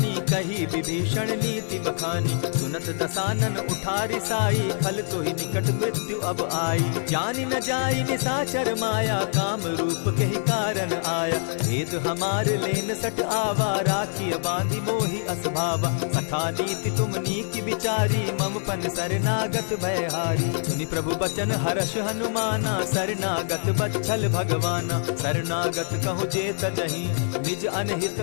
कही विभीषण नीति बखानी। सुनत दसानन उठारी साई, खल तो ही निकट मृत्यु अब आई। जानि न जाई निशाचर माया, काम रूप के ही कारण आया। भेद हमार लेन सट आवा, राखी बांधी मोहि असभावा। सखा नीति तुम नीकी विचारी, मम पन शरणागत भयहारी। सुनि प्रभु बचन हर्ष हनुमाना, शरणागत बच्छल भगवाना। शरणागत कहु जे तजहि, निज अनहित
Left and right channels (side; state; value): right; silent; 62 dB below the other